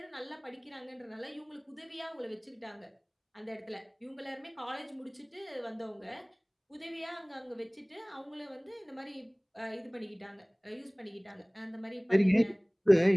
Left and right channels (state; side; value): identical; both; correlation 1.00